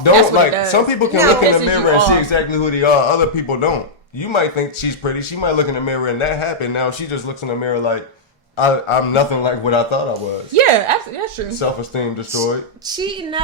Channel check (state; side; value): normal; both; correlation -0.09